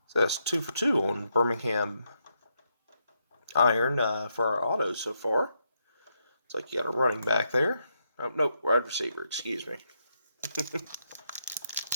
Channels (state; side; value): inverted; both; correlation -0.80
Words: So that's 2 for 2 on Birmingham Iron for our autos so far. It's like you got a running back there. Oh, nope, wide receiver, excuse me.